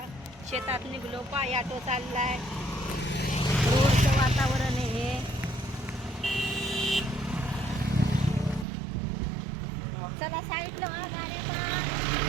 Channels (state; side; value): drops out; left; at 8.7 s